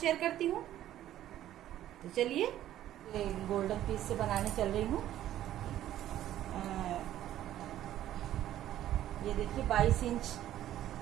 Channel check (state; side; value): quieter; left; 12.6 dB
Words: करती हूँ। तो चलिए, ये गोल्डन पीस से बनाने चल रही हूँ। ये देखिए 22 इंच